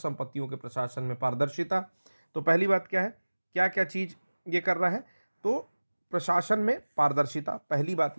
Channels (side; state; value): both; inverted; correlation -1.00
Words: के प्रशासन में पारदर्शिता। तो पहली बात क्या है, क्या क्या चीज ये कर रहा है? तो प्रशासन में पारदर्शिता, पहली बात